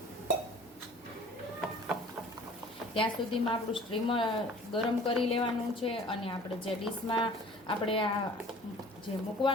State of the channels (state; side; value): normal; both; correlation 0.49